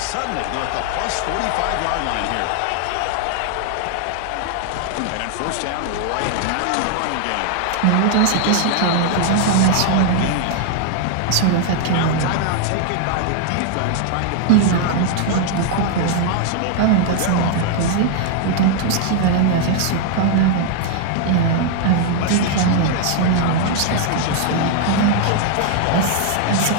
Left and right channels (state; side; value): different; both; correlation 0.00